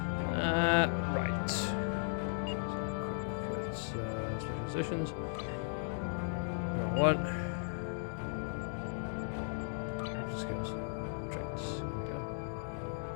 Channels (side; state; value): right; silent; digital silence